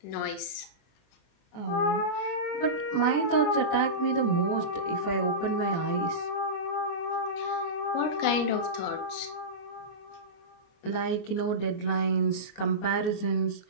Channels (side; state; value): right; late; 24 ms